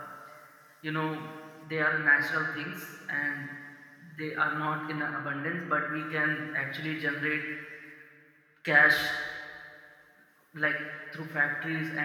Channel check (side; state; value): both; identical; correlation 1.00